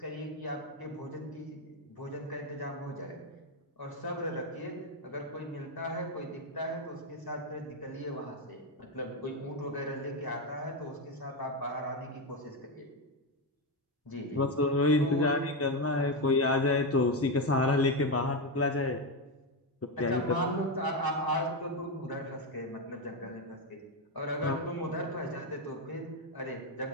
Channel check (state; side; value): normal; both; correlation 0.09